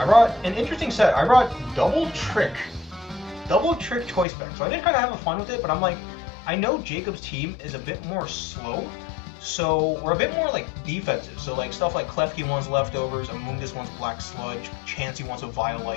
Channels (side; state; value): right; drops out; at 4.2 s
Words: I brought an interesting set. I brought Double Trick Choice Spec. So I did kind of have fun with it, but I'm like, I know Jacob's team is a bit more slow, so we're a bit more like defensive. So like stuff like Klefki wants leftovers, Amoonguss wants Black Sludge, Chansey wants a